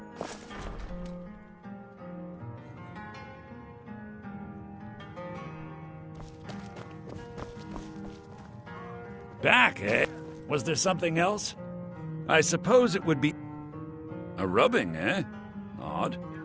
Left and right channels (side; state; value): both; identical; correlation 1.00